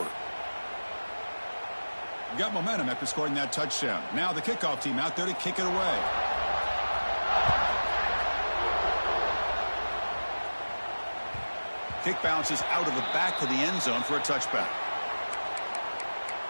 Got momentum after scoring that touchdown. Now the kickoff team out there to kick it away. Kick bounces out of the back of the end zone for a touchback.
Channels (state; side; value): inverted; both; correlation -1.00